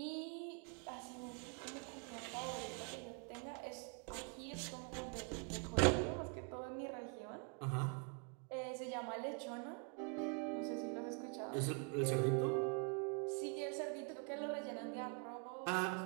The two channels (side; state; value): left; quieter; 38.5 dB